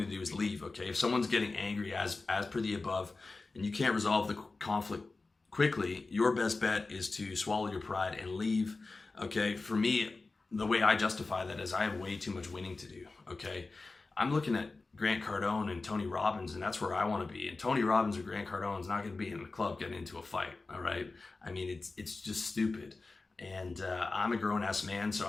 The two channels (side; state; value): right; quieter; 3.6 dB